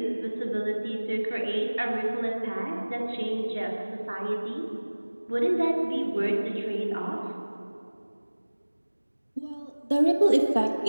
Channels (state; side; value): inverted; both; correlation -1.00